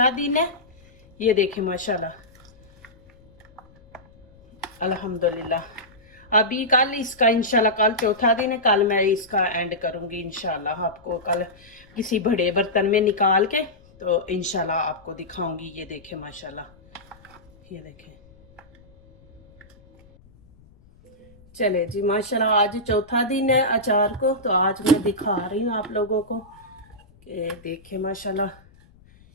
दिन है। ये देखें माशाल्लाह अल्हम्दुलिल्लाह। अभी कल इसका इंशाल्लाह कल चौथा दिन है, कल मैं इसका एंड करूँगी इंशाल्लाह। आपको कल किसी बड़े बर्तन में निकाल के तो इंशाल्लाह आपको दिखाऊंगी। ये देखें माशाल्लाह, ये देखें। चले जी माशाल्लाह आज चौथा दिन है अचार को, तो आज मैं दिखा रही हूँ आप लोगों को कि देखें माशाल्लाह।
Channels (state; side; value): noise; left; rumble, 27 dB below the sound